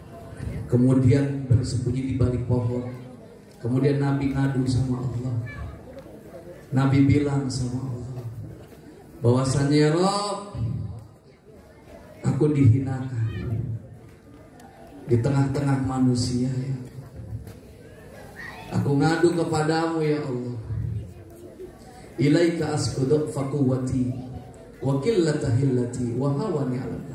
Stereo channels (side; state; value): both; identical; correlation 1.00